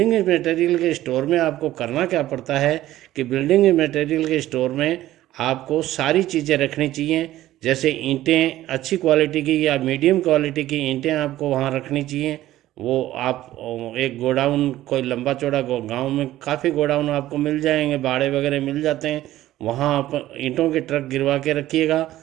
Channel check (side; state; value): left; quieter; 14.6 dB